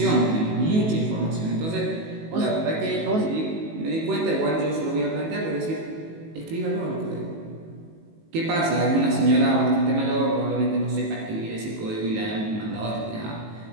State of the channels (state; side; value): late; left; 19 ms